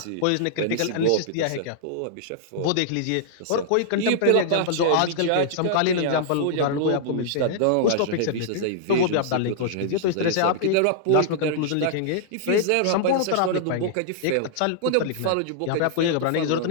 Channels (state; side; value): different; both; correlation -0.01